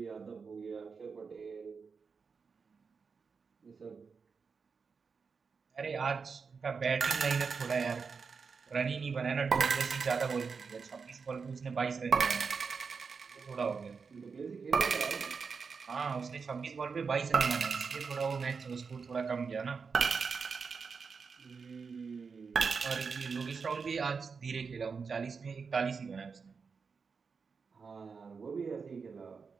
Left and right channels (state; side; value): quieter; left; 5.3 dB